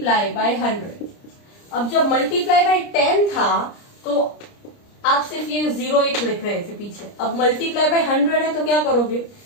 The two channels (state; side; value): late; right; 30 ms